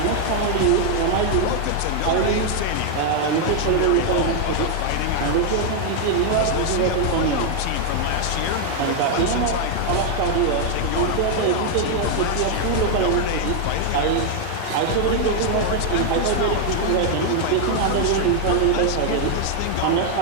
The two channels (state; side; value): different; both; correlation 0.00